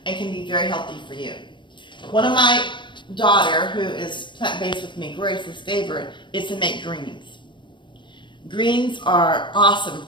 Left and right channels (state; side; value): late; right; 0.23 ms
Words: and can be very healthy for you. One of my daughter, who is plant-based with me, Grace's favorite, is to make greens. Greens are awesome